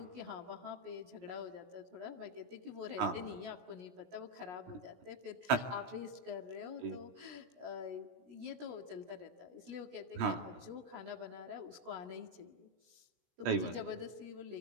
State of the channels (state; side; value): late; left; 17 ms